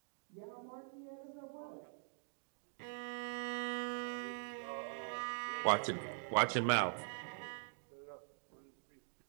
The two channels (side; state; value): left; silent; digital silence